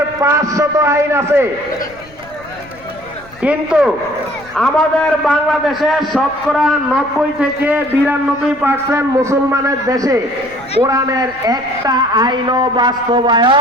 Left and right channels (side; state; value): left; noise; rumble, 24 dB below the sound